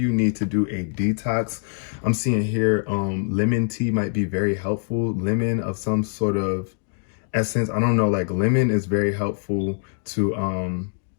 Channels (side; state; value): right; silent; digital silence